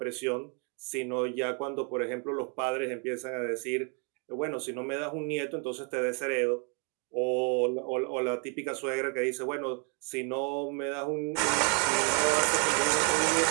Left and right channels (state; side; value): quieter; left; 38.6 dB